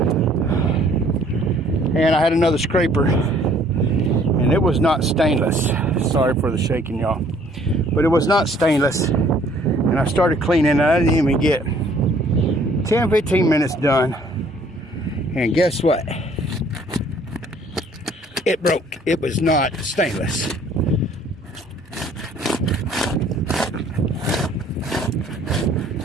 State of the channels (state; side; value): normal; both; correlation 0.59